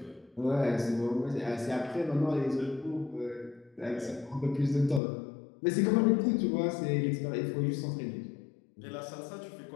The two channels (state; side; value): drops out; right; at 5.0 s